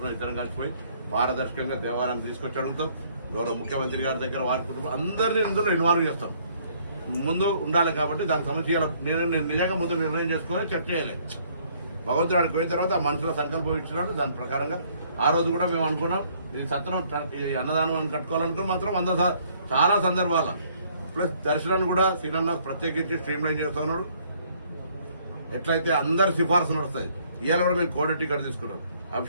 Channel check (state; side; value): inverted; both; correlation -0.63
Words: ఇద్దరు కలిసిపోయి పారదర్శకంగా దేవాలయాన్ని తీసుకొచ్చి అడుగుతాం. గౌరవ ముఖ్యమంత్రి గారి దగ్గర వారి కుటుంబం అందరినీ ఇందులో ఇన్వాల్వ్ చేస్తాం. ముందు ఉండాలి కాబట్టి దానికి సమస్య నేను నిజంగా ముందు నిర్ణయం చేసుకొని చర్చ చేయాలి. భగవంతుడు ఆడికి పోయిన తర్వాత ఆ మనుషుల సంకల్పం ఇచ్చినట్టు దాని ప్రకారంగా ఆ రోజు కూడా మేము అనుకున్నాం ఈ సత్రం ఈ అన్నదానం అని కట్టుకోవాలనుకుని మాత్రం చాలా సందర్భాల ప్లస్ దర్శనాన్ని కూడా సీనన్న ప్రత్యేకించి స్ట్రీమ్ లైన్ చేస్తున్నాడు. ఎట్లయితే అందరి సిఫార్సు నడుస్తుంది. ఇవాళ కూడా మేము కోడ టికెట్ తీసుకున్నాం,